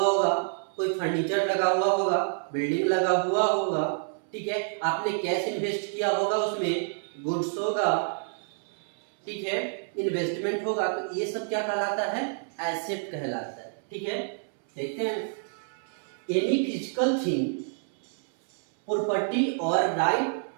होगा, कोई फर्नीचर लगा हुआ होगा, बिल्डिंग लगा हुआ होगा, ठीक है। आपने कैश इन्वेस्ट किया होगा, उसमें गुड्स होगा, ठीक है, इन्वेस्टमेंट होगा, तो ये सब क्या कहलाता है? एसेट कहलाता है। ठीक है। देखते हैं, एनी फिजिकल थिंग, प्रॉपर्टी और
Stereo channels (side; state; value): left; silent; 59 dB below the other